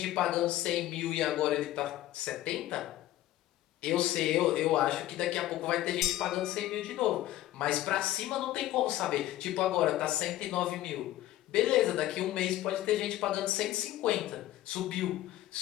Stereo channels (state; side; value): quieter; right; 14.5 dB